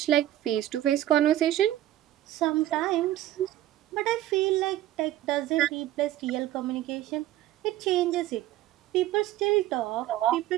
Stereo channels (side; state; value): left; quieter; 13.8 dB